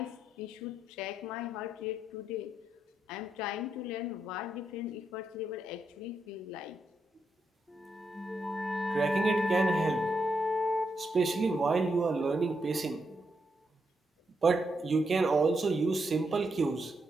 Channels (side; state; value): both; normal; correlation 0.82